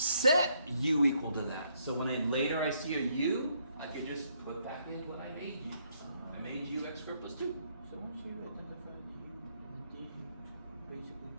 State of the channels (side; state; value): both; inverted; correlation -0.72